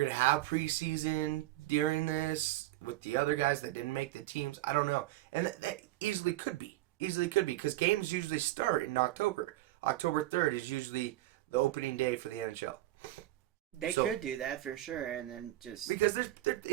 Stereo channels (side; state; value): left; quieter; 16.4 dB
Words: to have preseason during this with the other guys that didn't make the teams. I don't know. And that easily could be. Because games usually start in October. October 3rd is usually the opening day for the NHL. They could do that for sure, and then just because